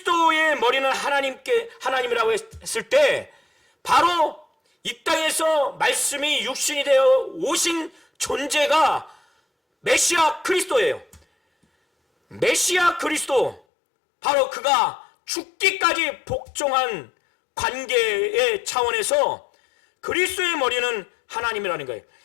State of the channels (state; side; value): drops out; right; at 13.6 s